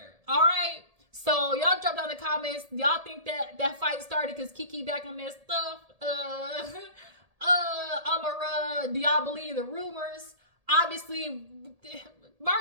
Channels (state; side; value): late; left; 1.8 ms